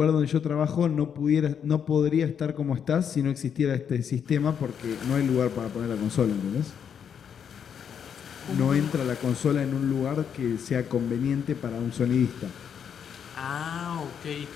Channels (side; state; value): right; quieter; 7.8 dB